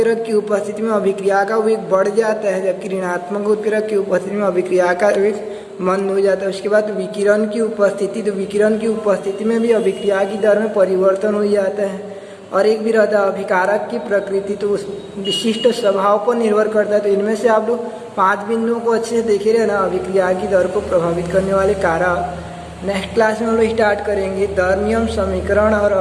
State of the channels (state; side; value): identical; both; correlation 1.00